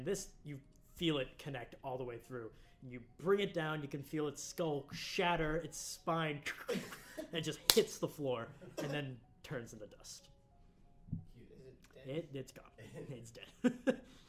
this, you feel it connect all the way through. You bring it down, you can feel its skull shatter, its spine, and it just hits the floor, and then turns into dust. Is it dead? It's gone. It's dead.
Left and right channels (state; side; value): identical; both; correlation 1.00